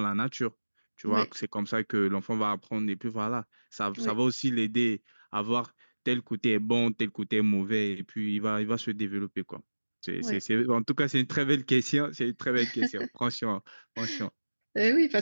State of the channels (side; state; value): both; inverted; correlation -1.00